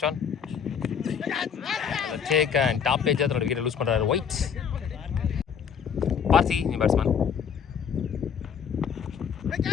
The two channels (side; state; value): right; quieter; 7.3 dB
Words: one take and top page அதோட விக்கெட் லூஸ் பண்ணுறாரு ஒயிட். பார்த்தி நீ பேட்ஸ்மேன்,